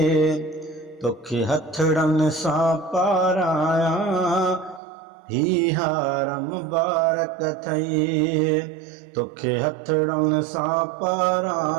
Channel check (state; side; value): drops out; left; at 4.8 s